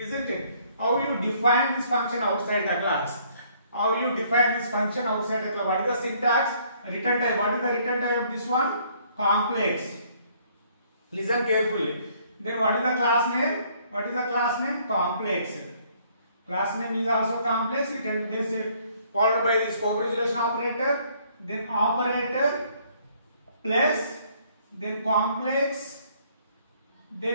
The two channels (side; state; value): both; inverted; correlation -0.63